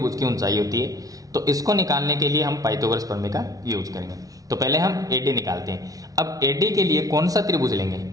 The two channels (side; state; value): left; late; 0.18 ms